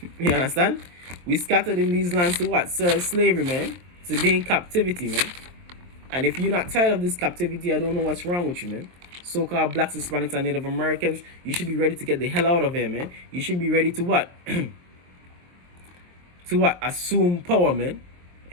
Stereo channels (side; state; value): left; late; 23 ms